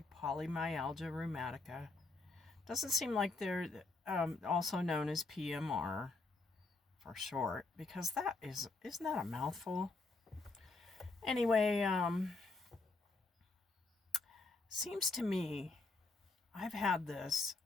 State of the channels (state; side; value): quieter; right; 3.5 dB